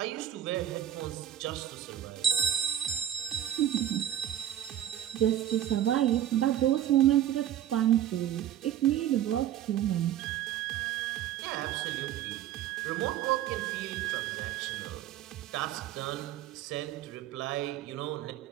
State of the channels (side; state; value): left; quieter; 11.5 dB